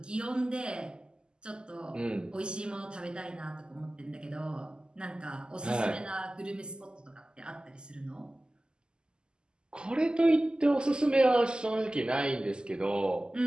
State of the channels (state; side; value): late; left; 0.047 ms